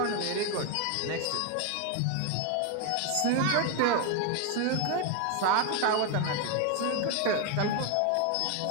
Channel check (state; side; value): different; both; correlation 0.01